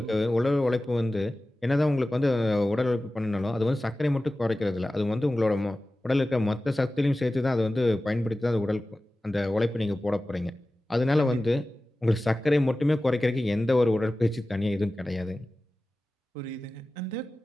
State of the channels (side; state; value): both; normal; correlation 0.96